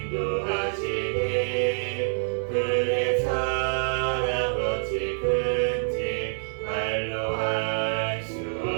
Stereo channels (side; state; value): left; silent; 57 dB below the other